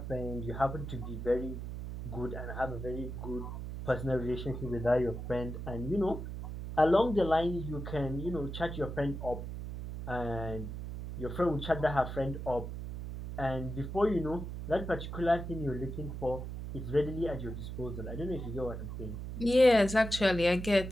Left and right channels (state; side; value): noise; right; hum, 7 dB below the sound